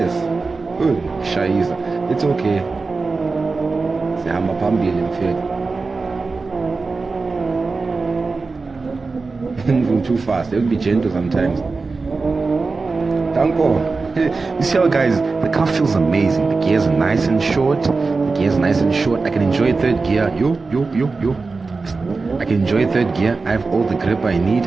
Good. Shaiza. It's okay. Sihamba phambili mfethu. Moving too fast. It will be gentle sometimes. Danko. You see how, guys, the car feels amazing. The gears are nice and short. I can enjoy third gear. I can enjoy third gear. I have all the grip I need.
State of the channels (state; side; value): quieter; left; 4.1 dB